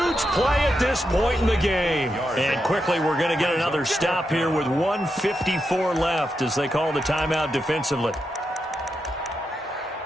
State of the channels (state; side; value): normal; both; correlation 0.85